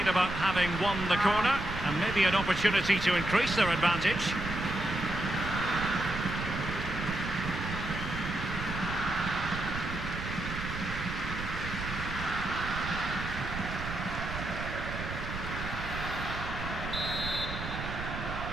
about having won the corner, and maybe an opportunity to increase their advantage.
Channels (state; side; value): noise; right; rumble, 7 dB below the sound